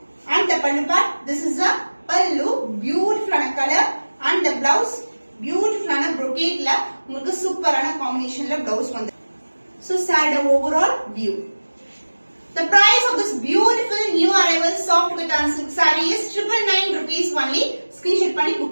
And the pallu part, this is the pallu, beautiful color. and the blouse beautiful brocade la உங்களுக்கு சூப்பரான காம்பினேஷன்ல blouse வந்து. so saree overall view. The price of this beautiful new arrival soft cotton silk saree is 999 rupees only. screenshot பண்ணி book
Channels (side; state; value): both; inverted; correlation -1.00